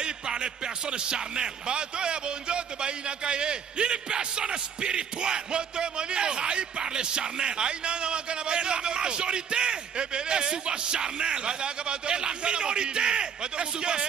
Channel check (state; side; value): quieter; left; 7.3 dB